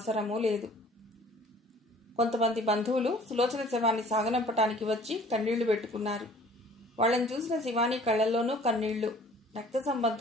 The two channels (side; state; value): both; normal; correlation 0.52